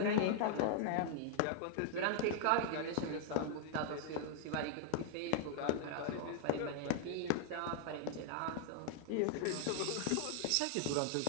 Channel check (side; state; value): both; different; correlation 0.00